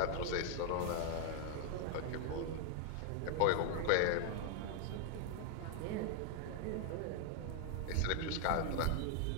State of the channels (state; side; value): different; both; correlation 0.00